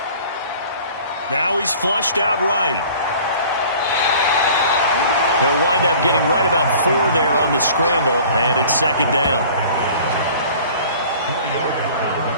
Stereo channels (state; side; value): inverted; both; correlation -0.47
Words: Now he's flushed out right. He'll wind up getting right about 4 there on the scramble, and it's 2nd down.